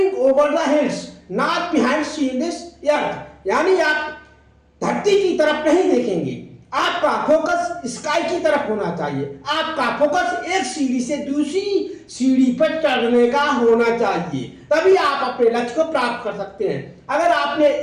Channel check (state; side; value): identical; both; correlation 1.00